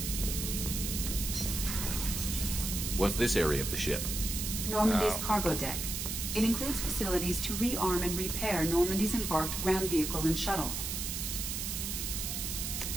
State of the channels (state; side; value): noise; right; hiss, 3 dB below the sound